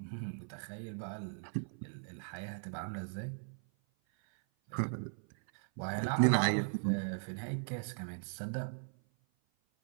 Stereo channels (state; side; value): silent; left; 52 dB below the other